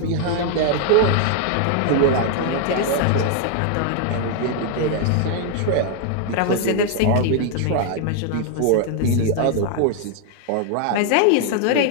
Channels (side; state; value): both; different; correlation 0.00